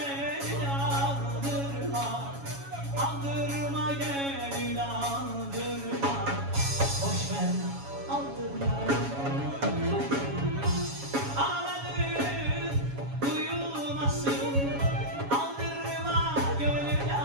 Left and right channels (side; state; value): left; late; 7.2 ms